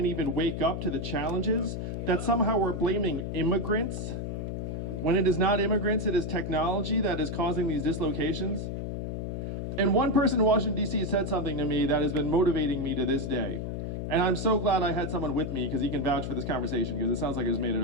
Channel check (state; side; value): noise; left; hum, 4 dB below the sound